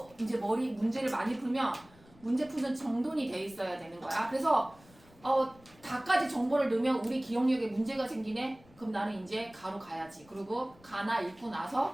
이제 머리 문제를 많이 풀면 문제 푸는 정돈이 돼 있어야 되는 거야. 그래서 다까지 정보를 넣으면 우리 기억력에 문제가 생기네? 그럼 나는 이제 가로 가야지. 그리고 가나 읽고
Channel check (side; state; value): left; noise; rumble, 26 dB below the sound